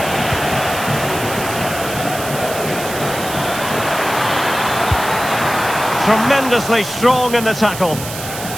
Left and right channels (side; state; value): right; noise; hiss, 9 dB below the sound